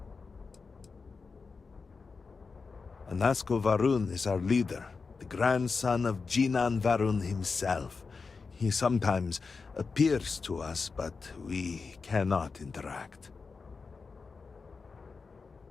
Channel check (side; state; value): right; quieter; 4.7 dB